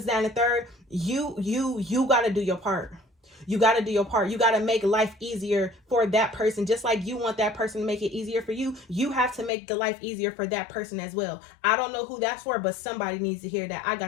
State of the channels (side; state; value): right; drops out; at 9.5 s